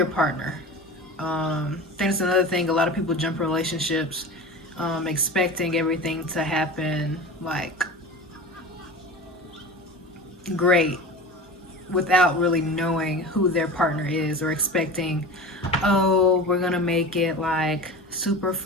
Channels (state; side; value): normal; both; correlation 0.33